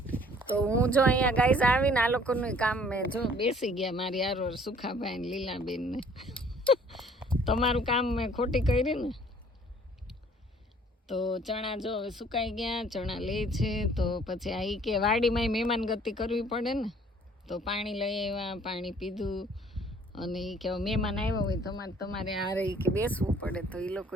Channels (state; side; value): normal; both; correlation 0.57